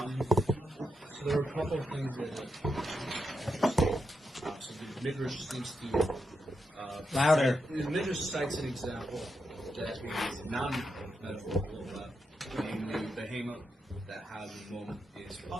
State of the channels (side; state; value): both; normal; correlation 0.85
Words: there are a couple of things that so the Midrash seems to Louder. The Midrash cites an example that is non-metaphorical, namely the behemoth that has a moment is